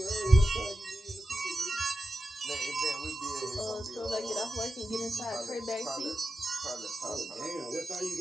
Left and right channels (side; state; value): both; normal; correlation 0.91